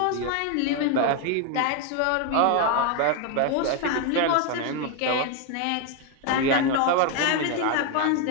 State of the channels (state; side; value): different; both; correlation 0.01